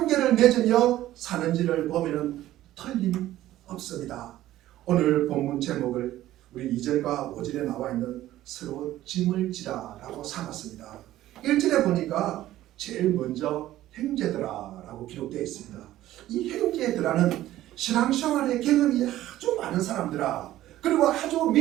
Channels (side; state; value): left; quieter; 14.3 dB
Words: 맺으며 사는지를 보면 틀림없습니다. 오늘 본문 제목을 우리 2절과 5절에 나와 있는 서로 짐을 지라 라고 삼았습니다. 1절에 보니까 제일 먼저 형제들아 라고 기록되어 있습니다. 이 형제들아는 신앙생활의 경험이 아주 많은 사람들아, 그리고 아주